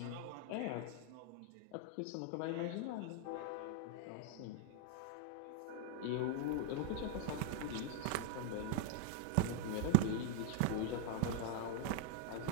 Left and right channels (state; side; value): different; both; correlation 0.00